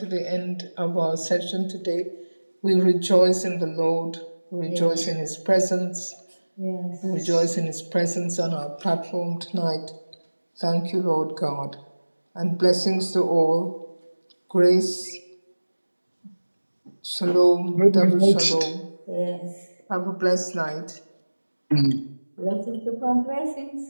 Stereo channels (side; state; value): both; inverted; correlation -1.00